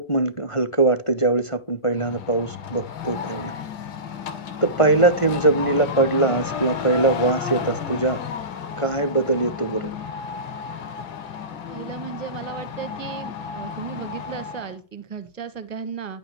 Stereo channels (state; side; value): late; right; 2.0 ms